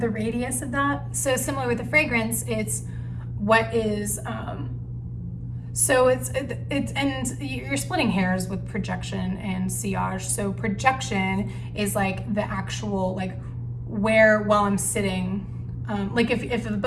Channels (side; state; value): both; identical; correlation 1.00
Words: radius of that? So similar with the fragrance, it's what is, so it's and you're splitting hairs with projection and sillage. So projection is like the actual, like where, while I'm sitting, like if the